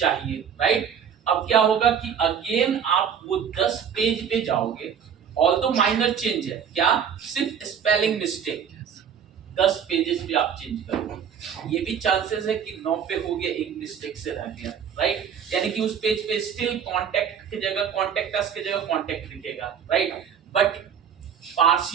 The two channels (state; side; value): quieter; left; 7.9 dB